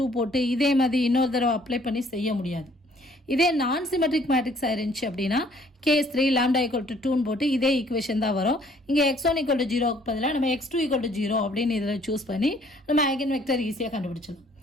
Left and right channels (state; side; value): normal; both; correlation 0.60